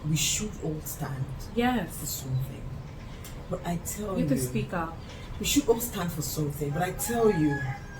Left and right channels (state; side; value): identical; both; correlation 1.00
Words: We should all stand. Yes. For something. But I tell you. You can speak up. We should all stand for something. But I tell you,